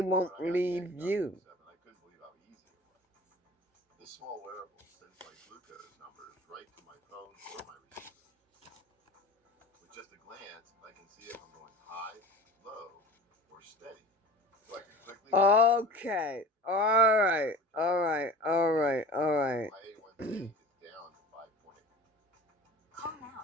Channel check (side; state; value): both; normal; correlation 0.39